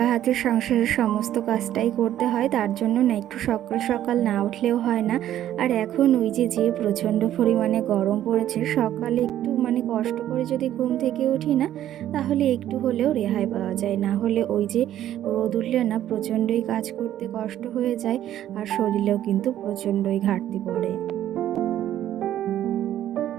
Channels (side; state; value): left; quieter; 12.0 dB